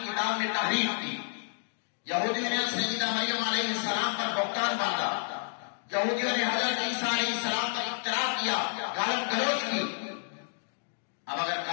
کتاب میں تحریف کی، یہودیوں نے سیدہ مریم علیہ السلام پر بہتان باندھا، یہودیوں نے حضرت عیسیٰ علیہ السلام پر افترا کیا، گالی گلوچ کی۔ اب اگر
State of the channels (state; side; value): silent; right; digital silence